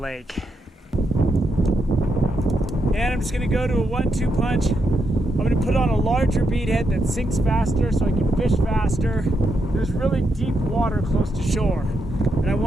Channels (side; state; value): both; normal; correlation 0.82